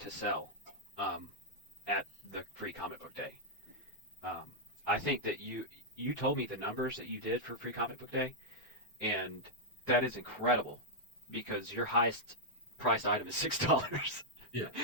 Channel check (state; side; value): normal; both; correlation -0.04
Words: sell at the Free Comic Book Day. I think that you told me the numbers that you did for Free Comic Book Day, and that is incredible because your highest priced item is $6. Yeah,